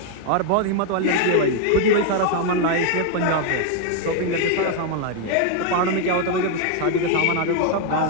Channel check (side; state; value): both; different; correlation 0.00